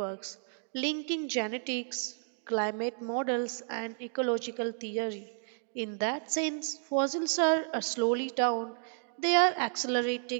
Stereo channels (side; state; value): left; silent; digital silence